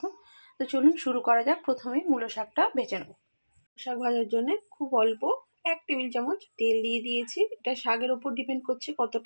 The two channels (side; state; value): both; inverted; correlation -1.00